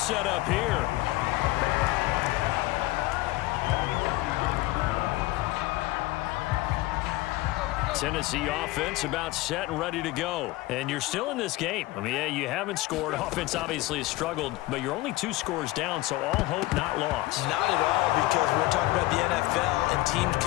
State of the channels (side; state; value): right; quieter; 18.9 dB